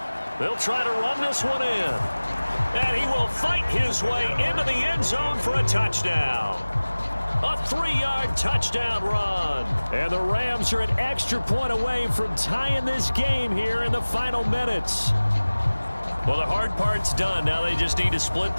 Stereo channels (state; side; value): inverted; both; correlation -1.00